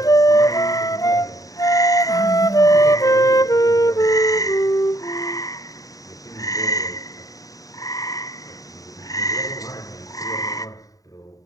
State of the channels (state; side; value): late; right; 0.17 ms